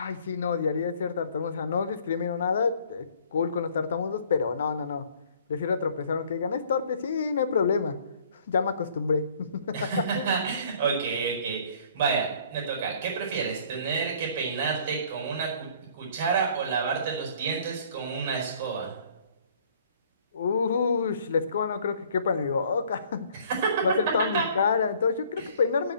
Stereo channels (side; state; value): both; inverted; correlation -0.57